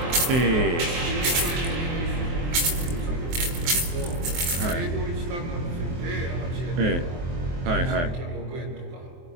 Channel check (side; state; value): left; late; 23 ms